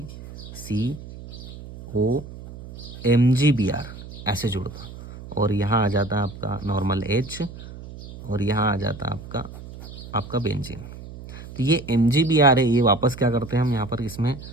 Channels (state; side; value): noise; right; hum, 14 dB below the sound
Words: ऐसे जुड़ता। और यहाँ आ जाता है आपका नॉर्मल H, और यहाँ आ जाता है आपका बेंजीन। तो ये MgBr है, ये वापस क्या करते हैं हम, यहाँ पर इसमें